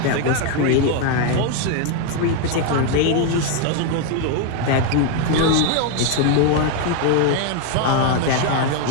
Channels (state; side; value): different; both; correlation 0.01